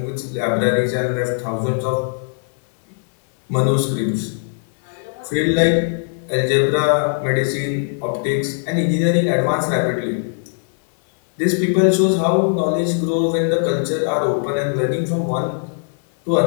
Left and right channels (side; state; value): right; silent; 59 dB below the other